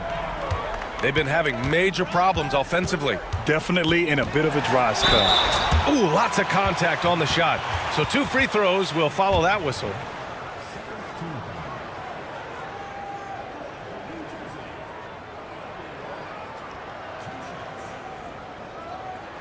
They've been having major problems offensively. Definitely in a bit of a dry spell. Ooh, lots of contact on the shot. So 2 free throws will follow that whistle.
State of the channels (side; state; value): both; identical; correlation 1.00